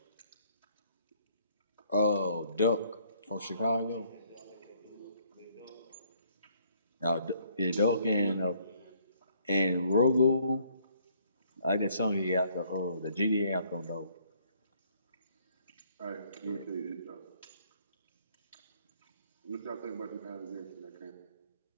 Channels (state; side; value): inverted; both; correlation -0.65